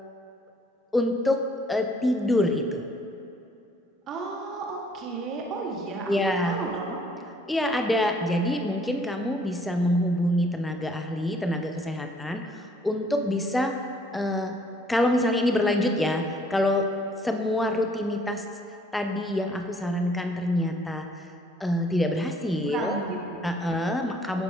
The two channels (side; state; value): both; normal; correlation 0.62